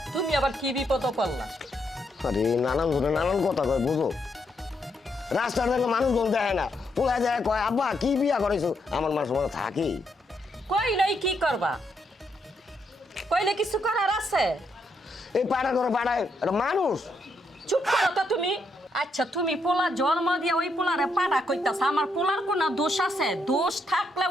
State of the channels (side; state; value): both; normal; correlation 0.78